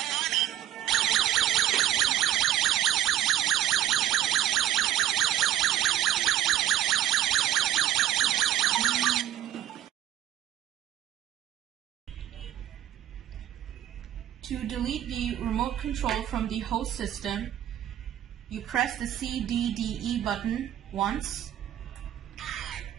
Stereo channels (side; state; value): left; quieter; 12.4 dB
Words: To delete the remote control from the host system, you press the CDDE button once,